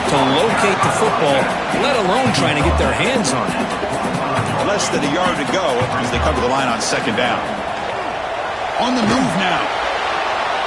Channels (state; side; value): identical; both; correlation 1.00